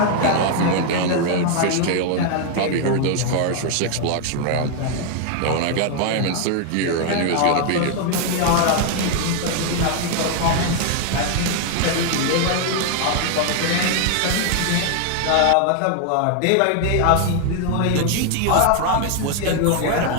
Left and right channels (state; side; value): different; both; correlation 0.00